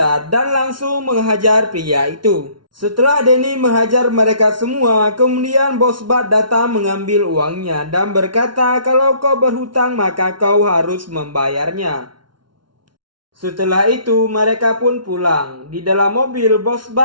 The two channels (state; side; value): late; left; 0.72 ms